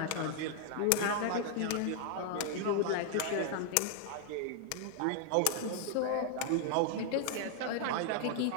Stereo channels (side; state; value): both; different; correlation -0.01